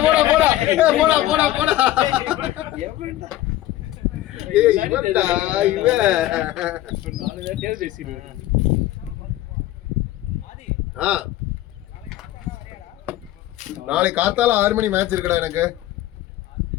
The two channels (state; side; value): quieter; right; 14.8 dB